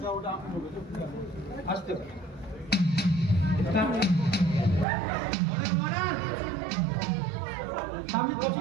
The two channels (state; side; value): drops out; left; at 4.9 s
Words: আস্তে ভাই। সামনে বসে